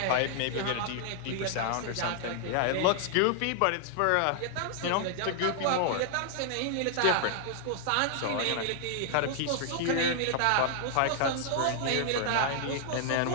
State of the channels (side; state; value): both; different; correlation 0.00